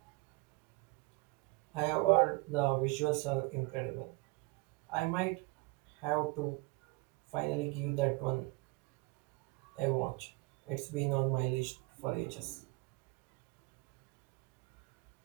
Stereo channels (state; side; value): quieter; left; 25.7 dB